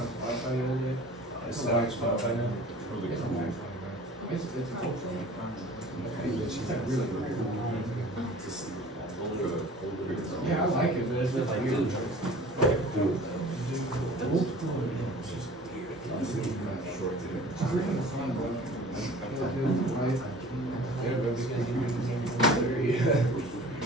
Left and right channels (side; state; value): both; normal; correlation 0.45